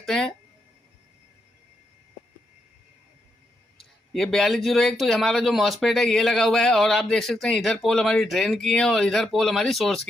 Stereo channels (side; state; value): both; normal; correlation 0.81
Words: हैं। ये 4201 तो हमारा जो मॉसफेट है ये लगा हुआ है, और आप देख सकते हैं इधर पोल हमारी ड्रेन की है और इधर पोल हमारी सोर्स